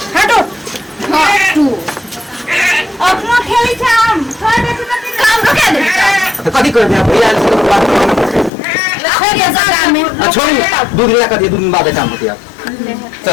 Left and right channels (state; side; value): drops out; right; at 8.5 s